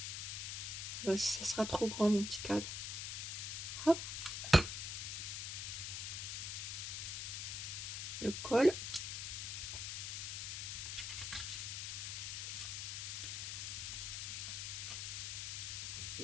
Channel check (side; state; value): left; noise; hiss, 3 dB below the sound